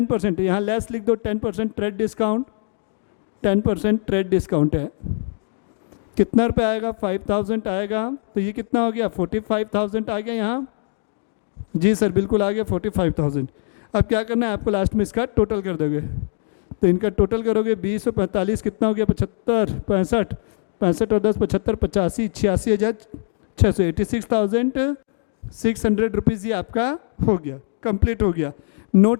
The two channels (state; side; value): silent; right; digital silence